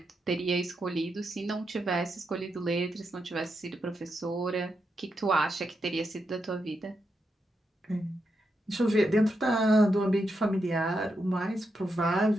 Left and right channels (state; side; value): normal; both; correlation 0.84